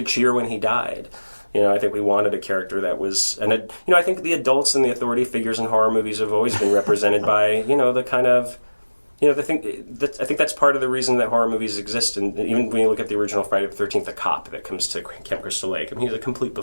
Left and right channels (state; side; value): inverted; both; correlation -1.00